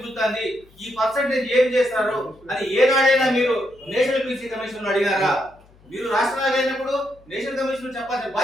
ఈ పర్సెంటేజ్ ఏం చేస్తారు అని ఏనాడైనా మీరు నేషనల్ బీసీ కమిషన్ అడిగారా? మీరు రాష్ట్రాలు అయినప్పుడు నేషనల్ కమిషన్ చెప్పాల్సిన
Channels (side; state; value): left; noise; hum, 28 dB below the sound